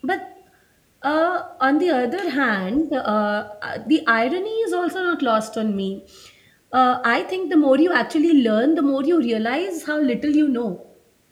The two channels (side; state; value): both; identical; correlation 1.00